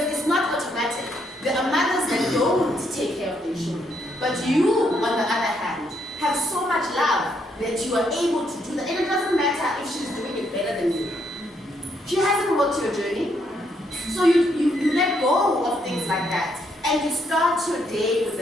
it's not automatic. There are mothers that don't take care of their children. But you, on the other hand, have so much love that you are able to do that. And it doesn't matter if she's doing it better than you. She hasn't walked your journey. So you let go of things like that. And you start your day with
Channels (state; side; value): normal; both; correlation 0.74